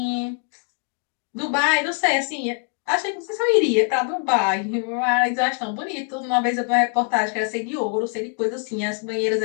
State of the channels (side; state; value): right; quieter; 39.8 dB